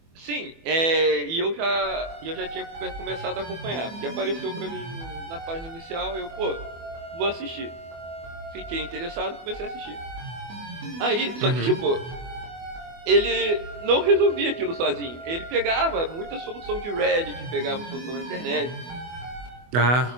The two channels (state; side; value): late; left; 24 ms